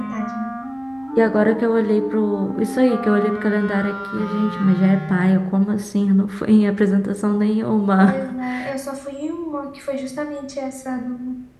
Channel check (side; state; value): both; identical; correlation 1.00